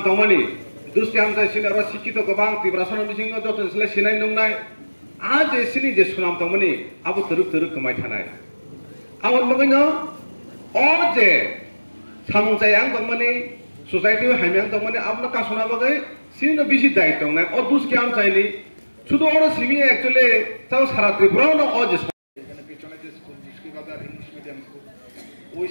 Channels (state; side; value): inverted; both; correlation -1.00